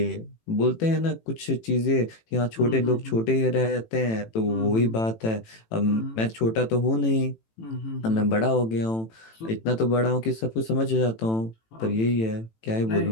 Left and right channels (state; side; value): late; right; 18 ms